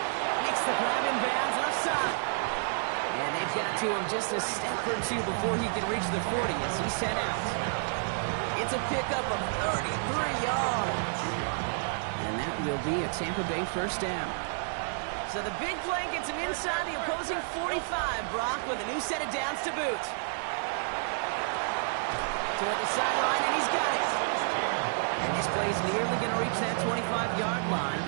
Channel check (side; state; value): left; silent; digital silence